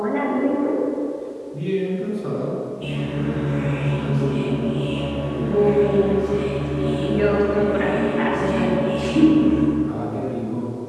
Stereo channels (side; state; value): both; identical; correlation 1.00